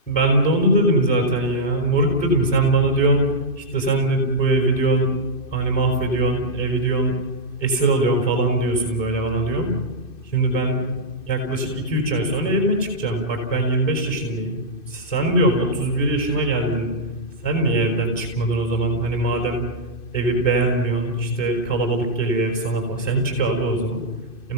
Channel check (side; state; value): right; late; 2.6 ms